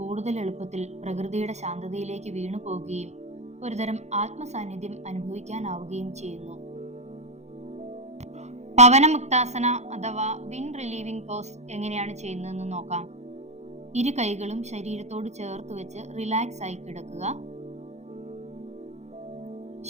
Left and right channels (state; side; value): late; left; 0.33 ms